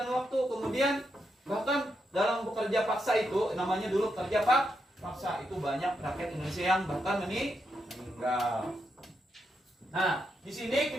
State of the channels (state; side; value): normal; both; correlation 0.83